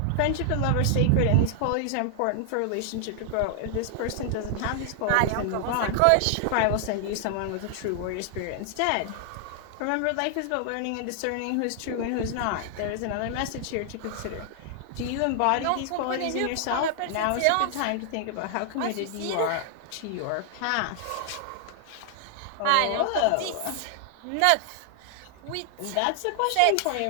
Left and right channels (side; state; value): both; different; correlation 0.00